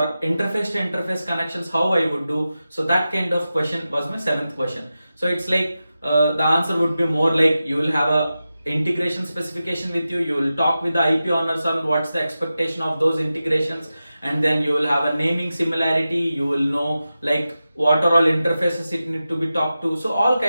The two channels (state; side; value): inverted; both; correlation -0.93